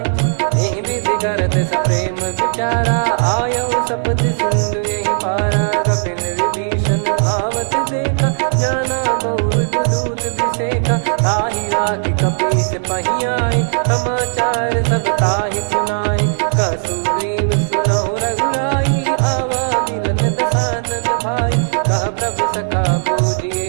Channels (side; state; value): left; silent; digital silence